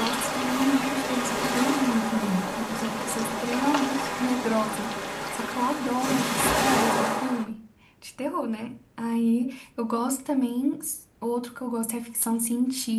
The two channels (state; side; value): identical; both; correlation 1.00